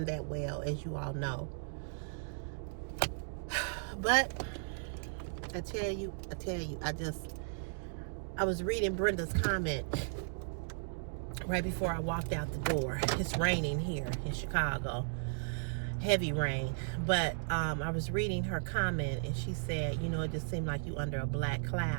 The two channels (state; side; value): silent; left; digital silence